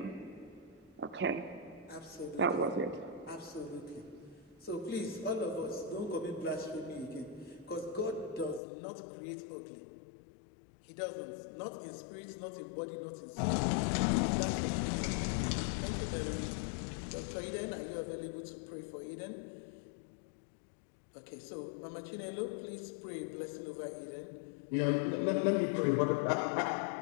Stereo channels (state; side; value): drops out; right; at 8.6 s